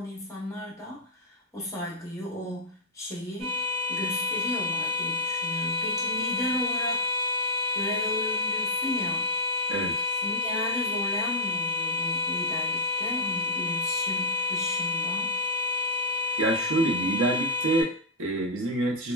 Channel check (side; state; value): both; normal; correlation -0.07